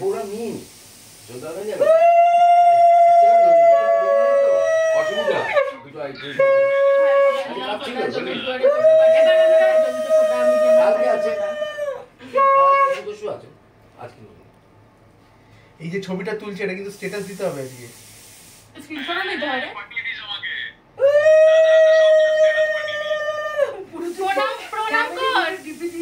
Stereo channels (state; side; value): identical; both; correlation 1.00